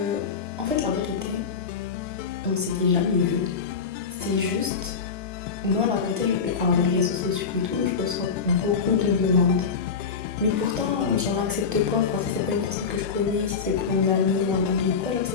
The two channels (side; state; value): right; quieter; 5.7 dB